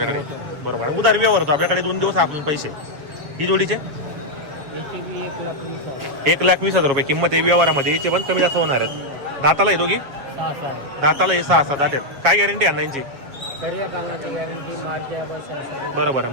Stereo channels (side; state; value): left; late; 7.2 ms